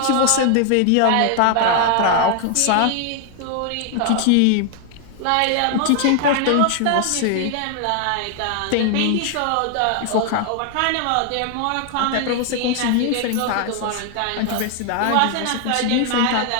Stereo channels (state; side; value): different; both; correlation 0.00